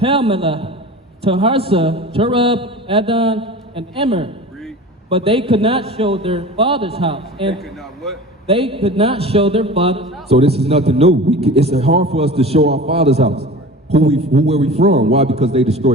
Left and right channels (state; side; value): normal; both; correlation 0.36